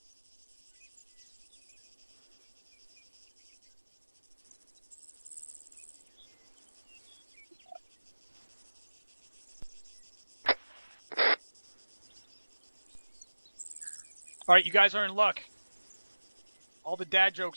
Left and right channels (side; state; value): both; inverted; correlation -1.00